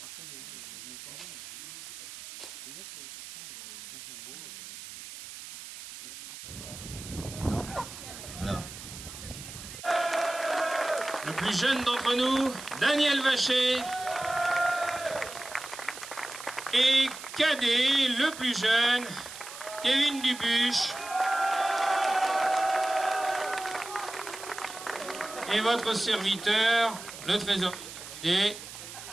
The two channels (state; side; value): noise; right; hiss, 12 dB below the sound